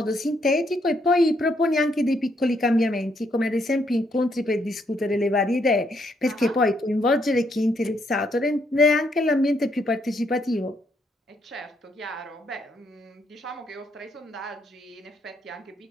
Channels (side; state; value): both; normal; correlation 0.74